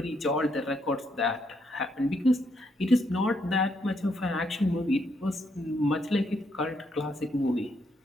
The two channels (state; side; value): normal; both; correlation 0.76